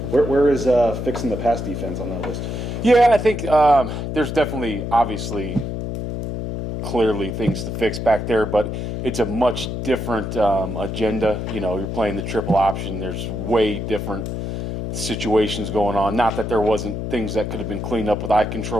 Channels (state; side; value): noise; left; hum, 4 dB below the sound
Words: Where is fixing the pass defense on that list? Yeah, I think there's definitely, obviously, clearly things to fix back there, but it's a much different agenda. You know, you're playing the triple option. There's way different situations going on. Not that there wasn't things that could have been cleaned up with eye